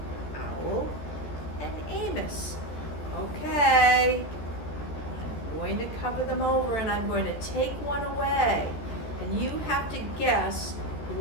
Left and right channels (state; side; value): late; right; 14 ms